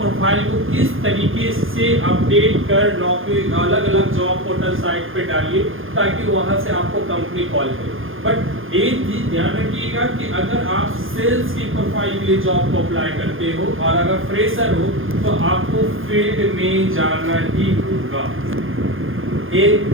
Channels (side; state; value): left; late; 0.59 ms